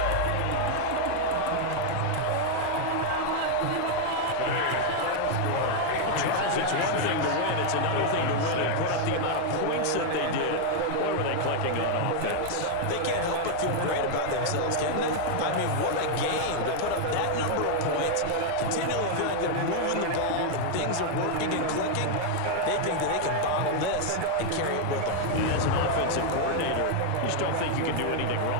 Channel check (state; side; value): different; both; correlation 0.00